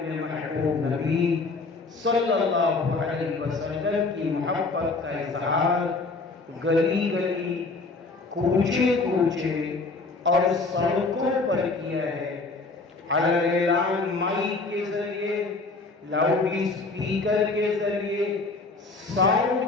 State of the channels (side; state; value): right; quieter; 3.8 dB